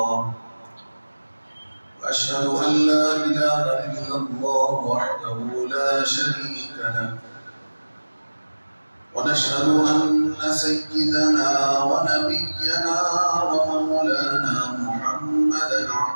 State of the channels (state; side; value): inverted; both; correlation -1.00